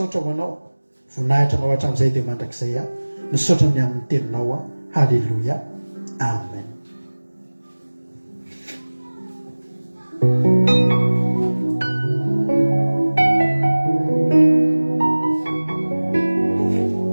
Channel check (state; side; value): inverted; both; correlation -1.00